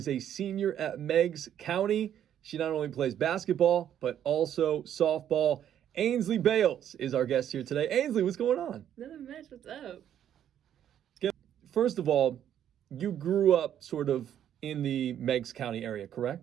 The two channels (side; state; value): left; quieter; 10.2 dB